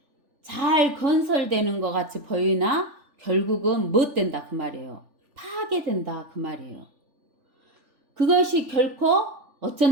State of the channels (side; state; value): left; late; 3.4 ms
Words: 잘 건설되는 것 같이 보이나 결국은 못 된다 그 말이에요. 파괴된다 그 말이에요. 그것이 결코